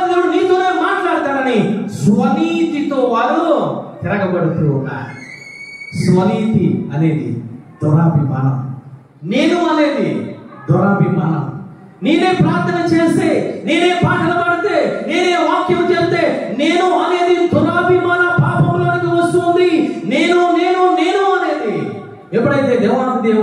దేవుడు నీతోనే మాట్లాడతాడని స్వనీతితో వారు తిరగబడుతూ ఉన్నారు. స్వనీతి అనేది దురాభిమానం, నేను అనేది దురాభిమానం. నేనే ప్రార్థన చేస్తే, నేనే పాటలు పాడితే, నేనే వాక్యం చేస్తే నేను అనేది దురాభిమాన పాపంలోనికి వస్తుంది. నేను నేను నేను అనేది ఎప్పుడైతే దేవాది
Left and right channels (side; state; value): both; identical; correlation 1.00